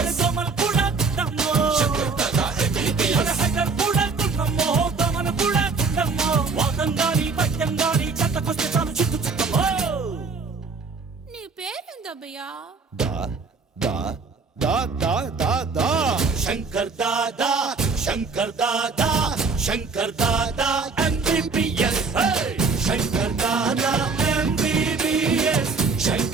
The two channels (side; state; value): left; quieter; 4.4 dB